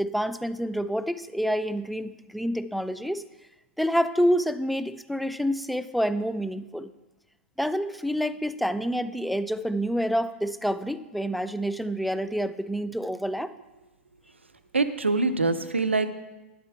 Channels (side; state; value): both; normal; correlation 0.61